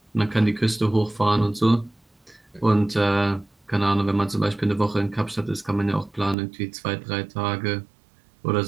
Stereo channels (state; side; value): drops out; left; at 6.4 s